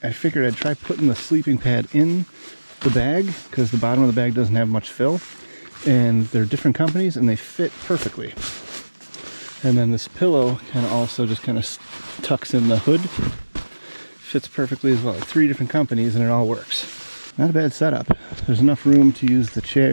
I figured I'd try putting the sleeping pad in the bag because the bottom of the bag doesn't have much fill, and they're different companies and they fit perfectly. And then this pillow kind of also just kind of tucks in the hood. Fits perfectly as well. Like 3 different companies and it all works. Not a bad setup. There's enough room to use the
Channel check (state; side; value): inverted; both; correlation -1.00